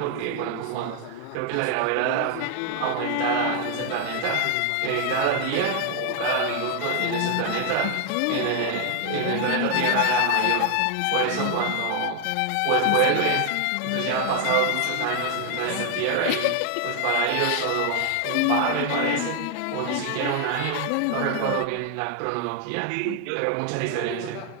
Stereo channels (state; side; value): different; both; correlation 0.00